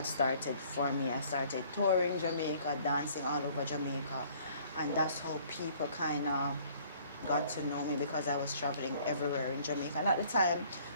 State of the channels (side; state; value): both; inverted; correlation -0.58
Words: started for me. I started touring Jamaica, dancing all over Jamaica. And that's how people kind of got to know me, because I was traveling everywhere in Jamaica. And at the time,